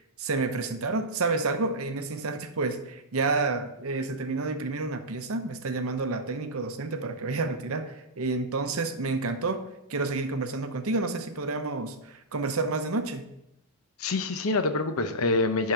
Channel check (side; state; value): both; normal; correlation -0.11